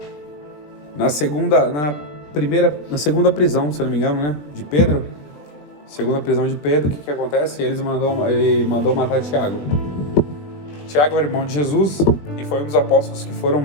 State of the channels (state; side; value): late; right; 20 ms